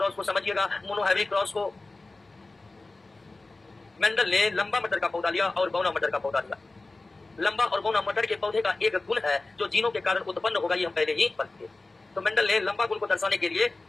को, समझिएगा मोनोहाइब्रिड क्रॉस को। मेंडल ने लंबा मटर का पौधा लिया और बौना मटर का पौधा लिया। लंबा और बौना मटर के पौधे का एक गुण है जो जीनों के कारण उत्पन्न होगा, ये हम पहले ही पढ़ चुके। तो मेंडल ने लंबा गुण को दर्शाने के लिए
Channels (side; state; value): right; quieter; 3.3 dB